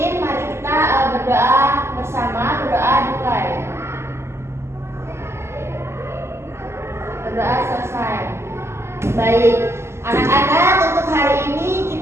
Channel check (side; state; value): left; late; 0.13 ms